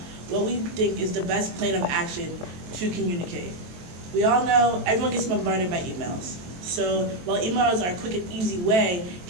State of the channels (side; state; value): left; late; 23 ms